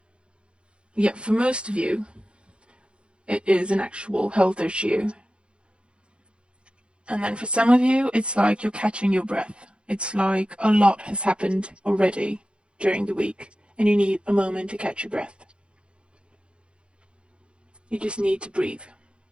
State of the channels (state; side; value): late; left; 0.057 ms